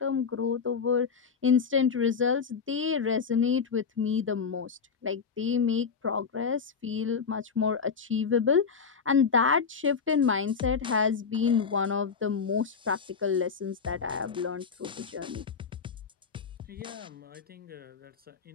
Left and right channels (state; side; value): quieter; right; 5.8 dB